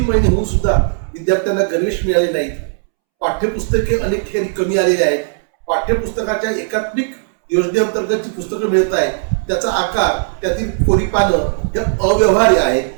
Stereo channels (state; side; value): silent; left; 69 dB below the other